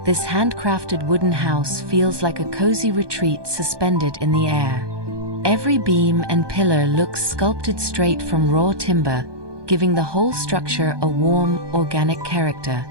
this handcrafted wooden house feels like a cozy retreat suspended in the air. Every beam and pillar looks sculpted straight from raw timber, giving the whole structure a warm, organic character.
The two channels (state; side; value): late; left; 1.2 ms